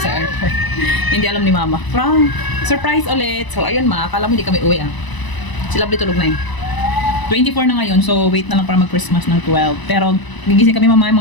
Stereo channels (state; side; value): late; right; 1.0 ms